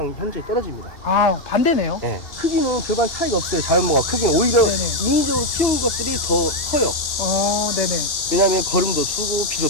현저히 떨어집니다. 반대네요. 네. 크기는 별반 차이가 없어요. 자연목과 크기는 오히려 네네. 인위적으로 키운 것들이 더 커요. 네네. 왜냐하면 거름도 주고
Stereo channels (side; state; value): right; late; 3.0 ms